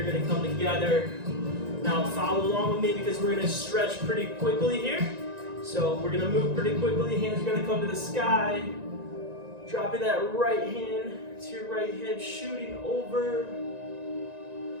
going to come together. Now follow along with me because we're going to stretch pretty quickly here. So we're going to move pretty quickly. Hands are going to come to the sky. Dropping that right hand to your right hip, shooting over.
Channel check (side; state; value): left; late; 1.9 ms